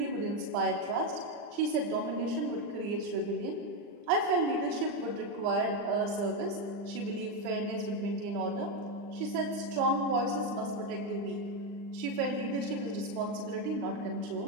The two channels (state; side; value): late; left; 39 ms